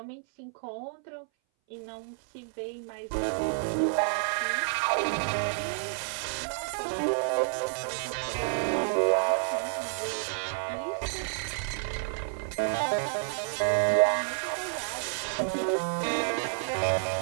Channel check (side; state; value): left; silent; 58 dB below the other